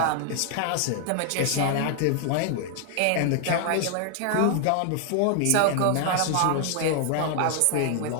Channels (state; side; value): different; both; correlation 0.00